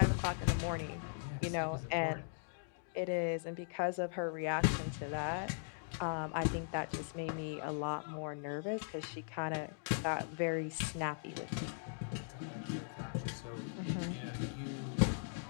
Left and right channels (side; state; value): right; silent; digital silence